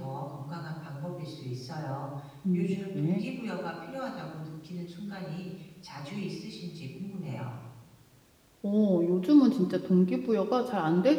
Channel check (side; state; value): both; identical; correlation 1.00